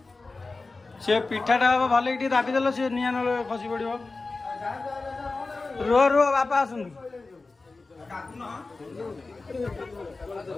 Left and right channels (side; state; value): right; quieter; 3.7 dB